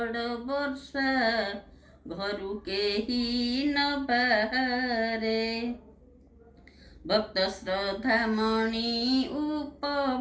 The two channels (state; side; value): identical; both; correlation 1.00